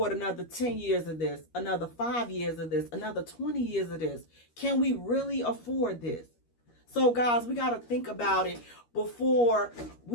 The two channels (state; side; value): late; right; 13 ms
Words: another 10 years of this, another 5 years of this, another 20 years of this. Can we really afford this? So, guys, we got to think about it before